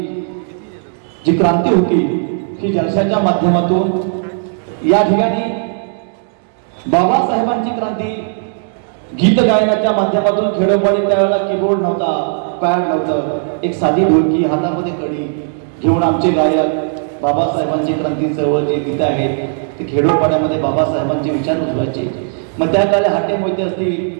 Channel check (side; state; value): left; silent; digital silence